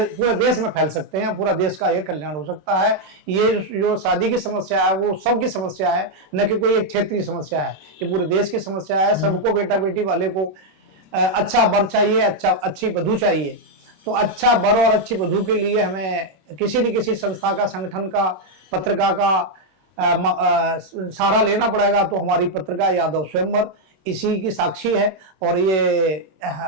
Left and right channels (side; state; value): left; late; 26 ms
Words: देश में फैल सकते हैं, पूरा देश का ये कल्याण हो सकता है। ये जो शादी की समस्या है वो सबकी समस्या है, न कि कोई एक क्षेत्रीय समस्या है, ये पूरे देश की समस्या है। सबको, बेटा बेटी वाले को अच्छा वर चाहिए, अच्छी वधू चाहिए। तो अच्छा वर और अच्छी वधू के लिए हमें किसी न किसी संस्था का, संगठन का, पत्रिका का सहारा लेना पड़ेगा। तो हमारी पत्रिका यादव स्वयंवर इसी की साक्षी है। और ये